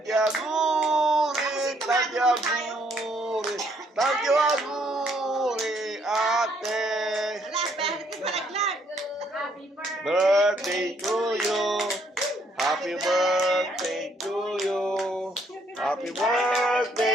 tagyaguri, tagyaguri, ate! Birthday to you! Happy birthday to you! Happy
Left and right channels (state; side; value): normal; both; correlation 0.69